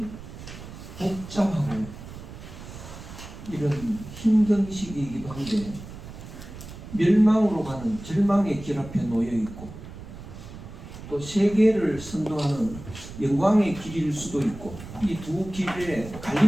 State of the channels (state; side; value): noise; right; rumble, 13 dB below the sound